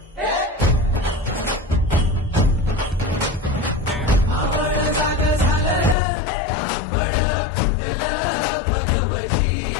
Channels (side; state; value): right; drops out; at 6.0 s